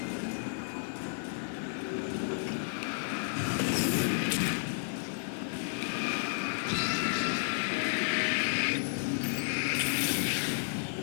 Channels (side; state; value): right; silent; 56 dB below the other